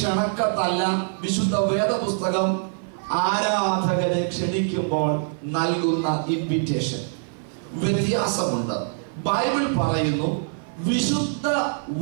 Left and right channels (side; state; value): left; silent; 55 dB below the other